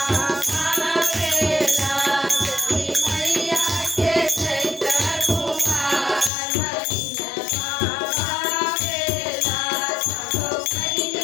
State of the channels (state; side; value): drops out; right; at 6.3 s